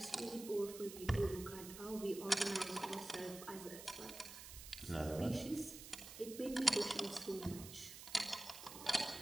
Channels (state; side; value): noise; right; hiss, 12 dB below the sound